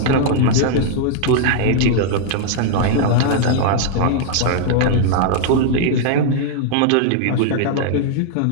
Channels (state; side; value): different; both; correlation -0.01